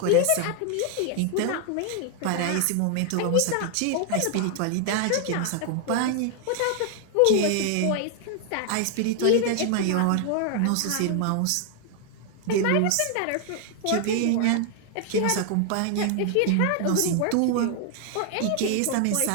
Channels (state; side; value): different; both; correlation 0.00